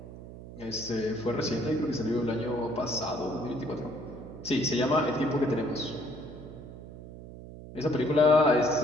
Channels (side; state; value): right; noise; hum, 14 dB below the sound